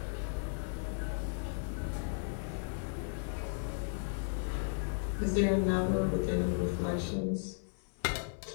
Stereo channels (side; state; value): right; silent; 54 dB below the other